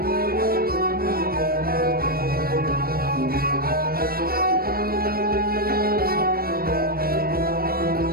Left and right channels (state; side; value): late; left; 0.44 ms